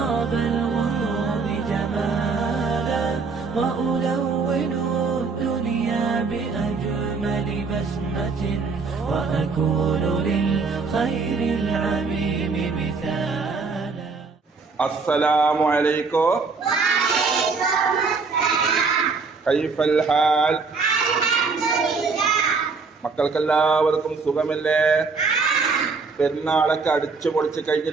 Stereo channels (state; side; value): quieter; left; 4.6 dB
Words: الغيوم جمالا وألون الدنيا بأجمل بسمة وأكون للخير العميم مثالا. السلام عليكم. وعليكم السلام. كيف الحال? الحمد لله. മക്കൾക്കെല്ലാവർക്കും സുഖമല്ലേ? പെരുന്നാളൊക്കെ അടിച്ചു പൊളിച്ച്